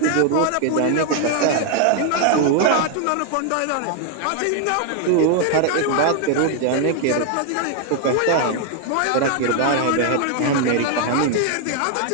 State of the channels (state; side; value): different; both; correlation 0.00